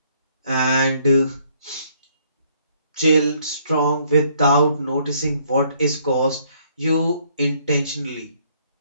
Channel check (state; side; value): inverted; both; correlation -0.66